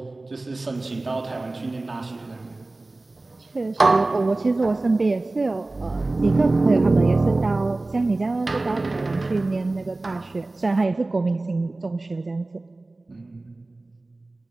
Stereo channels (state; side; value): quieter; left; 3.0 dB